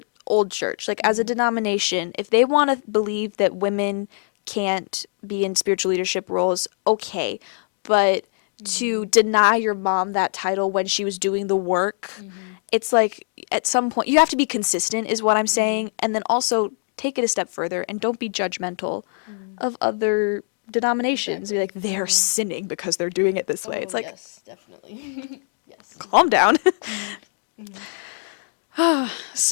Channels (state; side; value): silent; right; digital silence